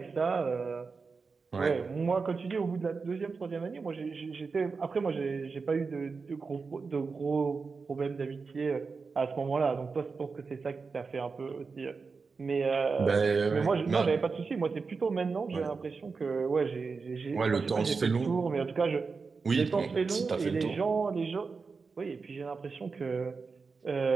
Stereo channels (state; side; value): quieter; left; 4.7 dB